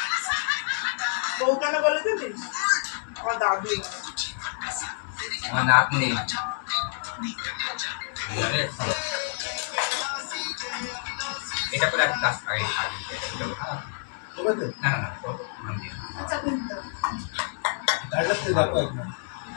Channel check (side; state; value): right; silent; digital silence